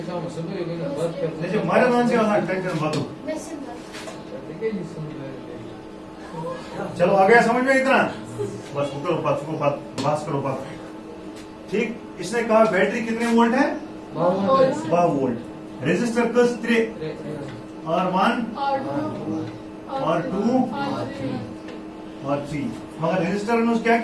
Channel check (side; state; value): both; identical; correlation 1.00